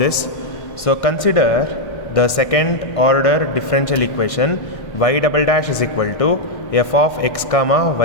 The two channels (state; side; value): late; right; 1.6 ms